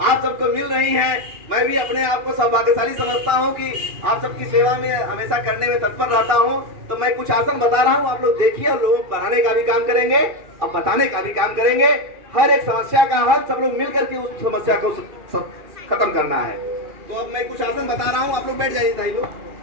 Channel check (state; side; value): late; left; 2.4 ms